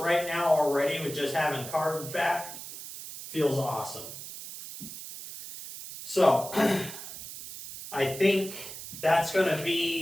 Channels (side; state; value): right; noise; hiss, 11 dB below the sound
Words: now already with just having carbs back feels awesome. So I think that's going to